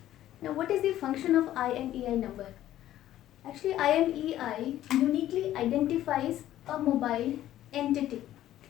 Now, what is the function of IMEI number? Actually, IMEI uniquely identifies a mobile entity,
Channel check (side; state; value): right; quieter; 13.1 dB